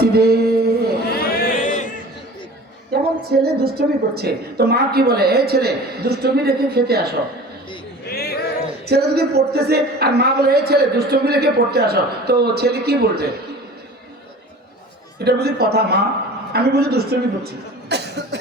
যেমন ছেলে দুষ্টুমি করছে, তো মা কি বলে? এই ছেলে দুষ্টুমি রেখে খেতে আসো। ছেলে যদি পড়তেছে আর মা বলে এই ছেলে দুষ্টুমি রেখে পড়তে আসো, তো ছেলে কি বলছে? এটা বুঝি কথা? মা আমি বুঝি দুষ্টুমি করছি,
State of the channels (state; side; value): normal; both; correlation 0.41